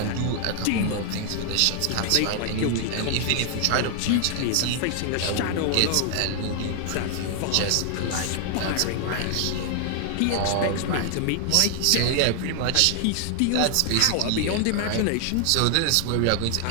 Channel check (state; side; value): different; both; correlation 0.00